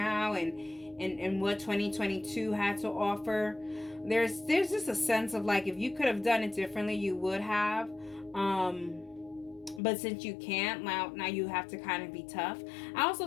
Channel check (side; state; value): right; drops out; at 9.8 s